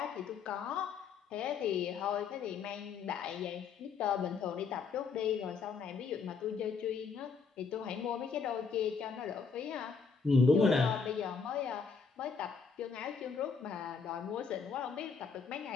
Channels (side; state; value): right; quieter; 5.4 dB